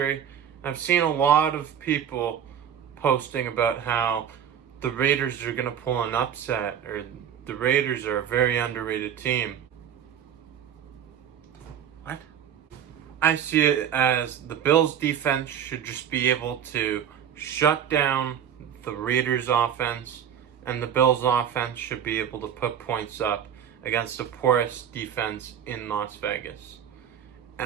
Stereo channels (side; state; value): left; quieter; 9.0 dB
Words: I've seen a lot of people posting about how the Raiders are going to pull an upset, or the Raiders are a very underrated team. What? I see it as the Bills defense should just be able to shut down the Raiders offense, and the Bills offense should be able to put points up against the poorest defense in Las Vegas.